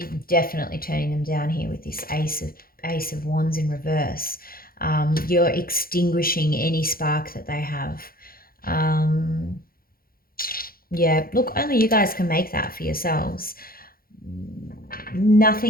definitely turning them down here with this Ace of Wands in reverse. You're extinguishing any spark that they have. Yeah, look, only you guys can make that for yourselves.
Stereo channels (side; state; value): right; late; 0.43 ms